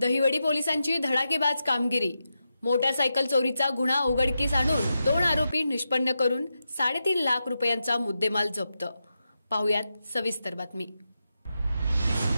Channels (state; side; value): inverted; both; correlation -0.88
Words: पोलिसांची धडाकेबाज कामगिरी। मोटारसायकल चोरीचा गुन्हा उघडकीस आणून 2 आरोपी निष्पन्न करून 3.5 लाख रुपयांचा मुद्देमाल जप्त। पाहुयात सविस्तर बातमी।